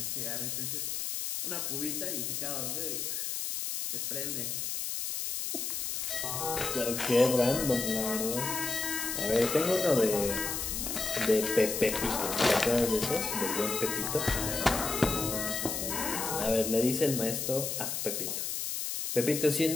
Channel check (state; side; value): noise; left; hiss, 2 dB below the sound